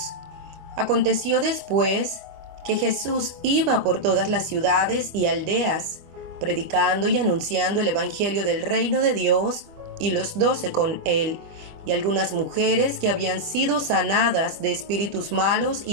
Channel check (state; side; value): late; left; 25 ms